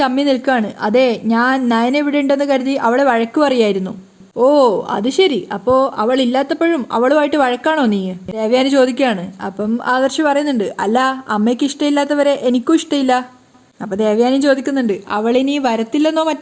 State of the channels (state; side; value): identical; both; correlation 1.00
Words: ചമ്മി നിൽക്കുകയാണ്. അതെ, ഞാൻ നയന ഇവിടെ ഉണ്ടെന്ന് കരുതി അവളെ വഴക്ക് പറയായിരുന്നു. ഓ അത് ശരി, അപ്പോൾ അവൾ ഇല്ലാത്തപ്പോഴും അവളുമായിട്ട് വഴക്കാണോ നീ? ദേവയാനി ചോദിക്കുകയാണ്. അപ്പം ആദർശ് പറയുന്നുണ്ട്, അല്ല, അമ്മയ്ക്ക് ഇഷ്ടമില്ലാത്തവരെ എനിക്കും ഇഷ്ടമില്ല. അപ്പോൾ ദേവയാനി ചോദിക്കുന്നുണ്ട്, അവളിനി വരത്തില്ലെന്നോ